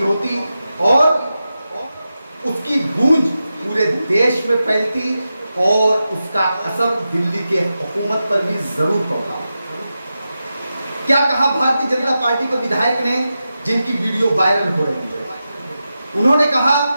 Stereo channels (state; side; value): inverted; both; correlation -0.91